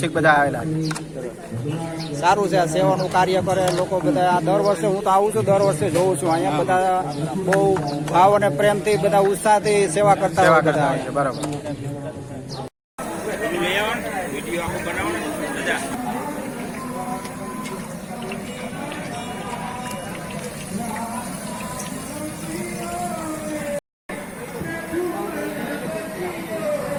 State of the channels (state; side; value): identical; both; correlation 1.00